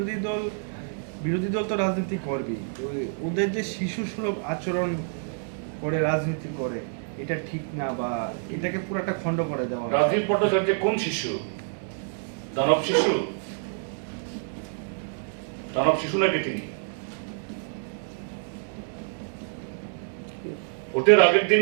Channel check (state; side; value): silent; left; digital silence